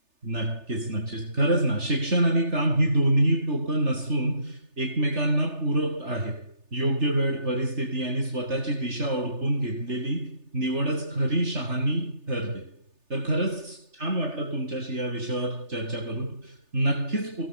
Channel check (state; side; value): late; left; 3.3 ms